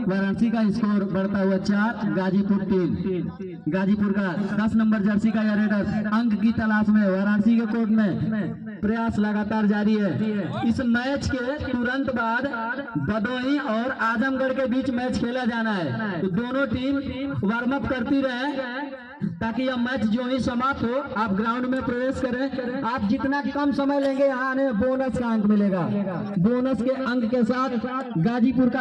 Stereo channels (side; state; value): both; identical; correlation 1.00